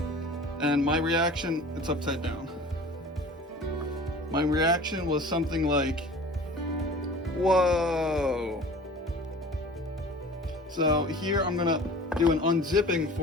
And my reaction, it's upside down. My reaction was something like, whoa. So here I'm gonna do an unzipping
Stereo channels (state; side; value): normal; both; correlation 0.42